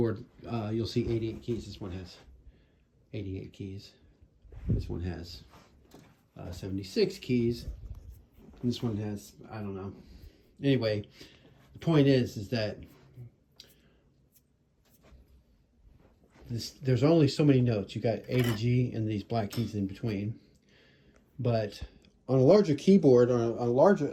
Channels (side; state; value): both; identical; correlation 1.00